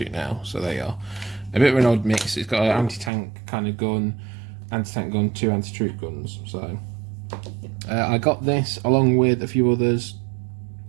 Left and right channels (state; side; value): drops out; left; at 3.1 s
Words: now, so there you are. A bit of an odd mix. It's got an anti-tank kind of gun, anti-tank gun, 2 anti-troop guns, so... I got this along with a few others,